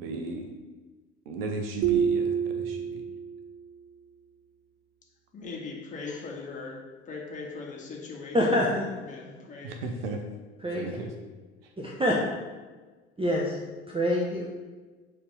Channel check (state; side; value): normal; both; correlation 0.42